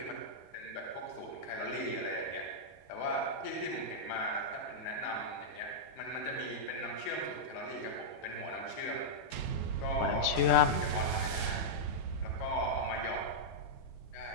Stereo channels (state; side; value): late; right; 17 ms